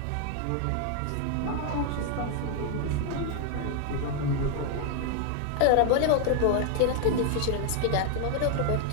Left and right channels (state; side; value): different; both; correlation 0.00